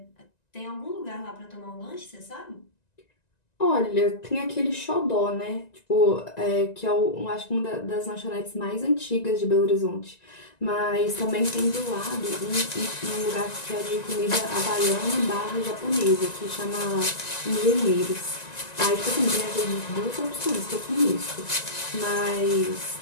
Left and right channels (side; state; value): right; late; 1.9 ms